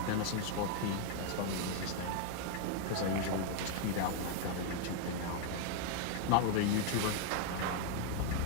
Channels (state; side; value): different; both; correlation 0.00